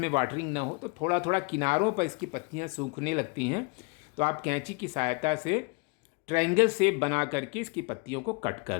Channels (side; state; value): right; quieter; 30.0 dB